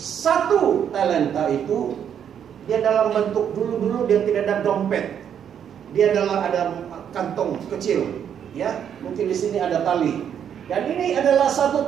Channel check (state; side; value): quieter; left; 8.7 dB